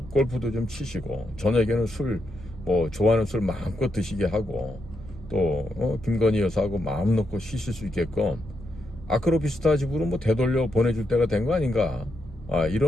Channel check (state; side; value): normal; both; correlation 0.82